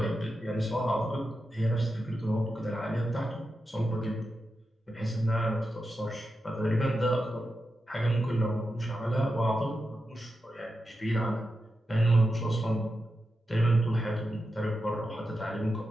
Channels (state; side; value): normal; both; correlation 0.89